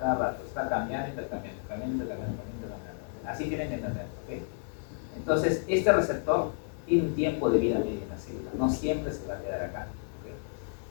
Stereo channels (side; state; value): right; silent; 57 dB below the other